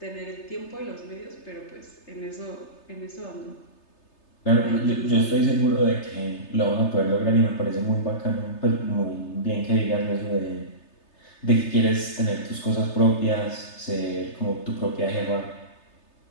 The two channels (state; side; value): late; right; 3.3 ms